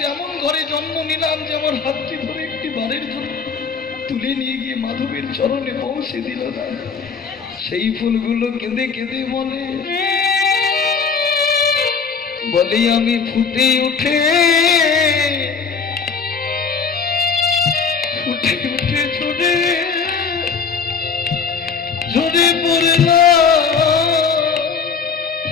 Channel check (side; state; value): right; quieter; 5.6 dB